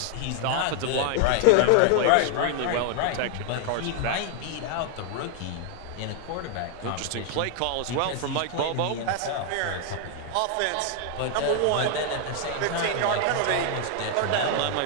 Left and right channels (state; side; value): different; both; correlation 0.00